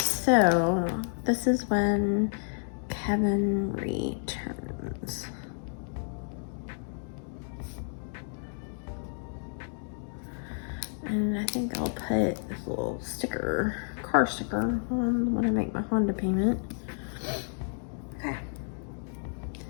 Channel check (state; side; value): silent; right; 57 dB below the other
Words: this is when Kevin returns. And I think I'll put this little sticker, car sticker, on when I make my Honda payment. Okay.